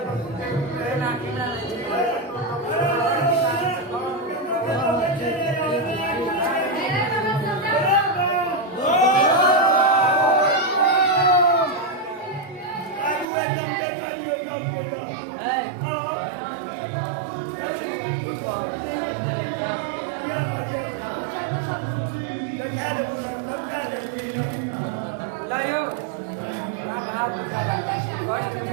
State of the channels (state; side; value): drops out; left; at 13.2 s